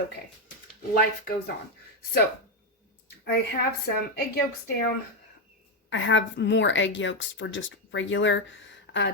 Life goes on. So, I have some egg yolks down. I have more egg yolks for just regular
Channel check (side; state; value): both; normal; correlation 0.06